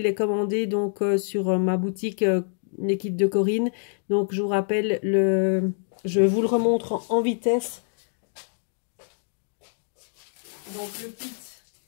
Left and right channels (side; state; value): right; silent; digital silence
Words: les commander donc sur ma boutique les kits de Corinne. Donc je vous rappelle je vous le remontre en vitesse. Donc le kit.